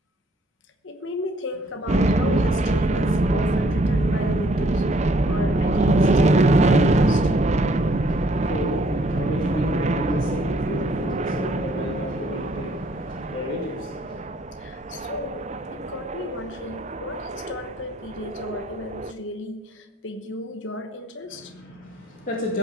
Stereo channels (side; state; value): both; normal; correlation 0.64